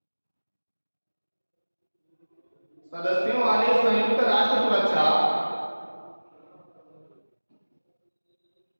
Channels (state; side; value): inverted; both; correlation -1.00